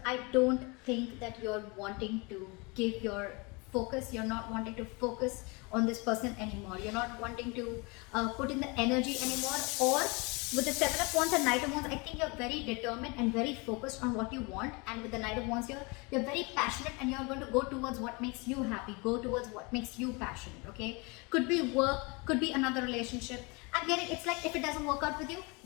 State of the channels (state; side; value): quieter; right; 28.6 dB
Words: I don't think that you're wanting to give your focus. You're not wanting to focus on this person anymore. You're not wanting to put in the energy anymore. Or with the Seven of Wands and Knight of Wands, I think you're very determined and very focused on what you want. And with the Knight of Wands here, you're very passionate, and you're going to go towards what makes you happy. Go towards what makes you passionate, okay? Could be work, could be another relationship. I'm getting, it's like if it doesn't work out with you,